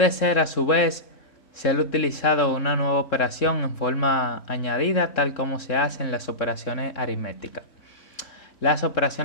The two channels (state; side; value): late; right; 3.7 ms